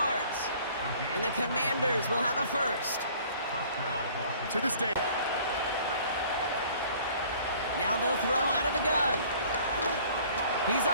And the Commanders will have a 1st. To this day. Now they'll throw out of the gun. He's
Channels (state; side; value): inverted; both; correlation -0.53